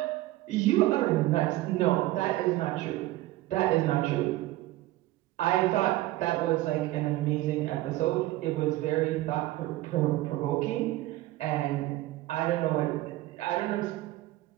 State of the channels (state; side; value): quieter; left; 16.9 dB